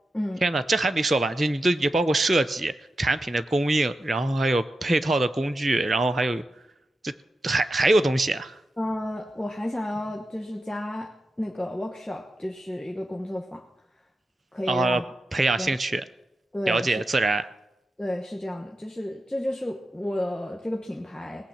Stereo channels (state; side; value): normal; both; correlation 0.90